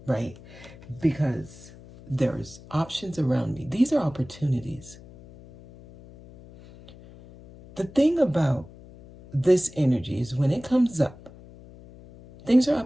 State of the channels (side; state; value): left; noise; hum, 20 dB below the sound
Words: right? Because there's options around me. These are opportunities. The thing about this energy is when it comes up, things are